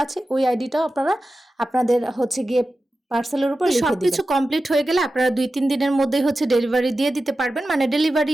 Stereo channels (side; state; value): both; normal; correlation 0.93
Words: আছে, ওই আইডিটাও আপনাদের হচ্ছে গিয়ে পার্সেলের উপর লিখে দিবেন। সবকিছু কমপ্লিট হয়ে গেলে আপনারা 2-3 দিনের মধ্যেই হচ্ছে ডেলিভারি দিয়ে দিতে পারবেন, মানে